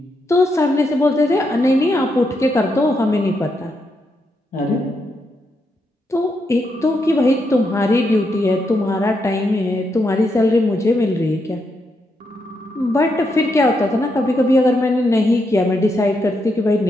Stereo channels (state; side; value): normal; both; correlation 0.81